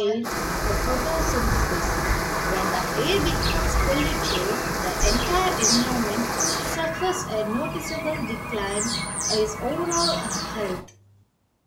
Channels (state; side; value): identical; both; correlation 1.00